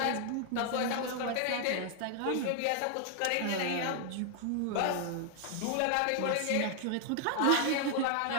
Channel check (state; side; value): different; both; correlation 0.00